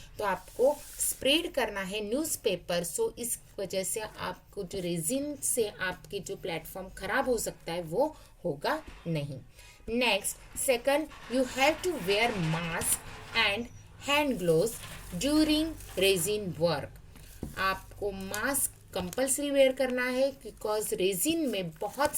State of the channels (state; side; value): identical; both; correlation 1.00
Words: तो आपको स्प्रेड करना है न्यूज़पेपर. सो इस वजह से आपको जो रेजिन से आपके जो प्लेटफॉर्म खराब हो सकता है वो होगा नहीं. Next, second, you have to wear mask and hand gloves during resin work. आपको मास्क कंपल्सरी वेयर करना है बिकॉज रेजिन में बहुत